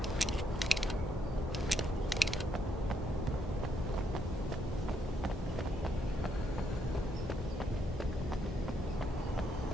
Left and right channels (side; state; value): both; normal; correlation 0.75